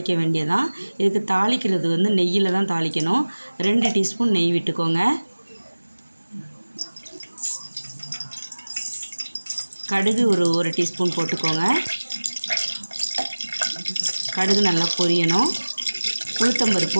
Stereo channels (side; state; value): both; inverted; correlation -1.00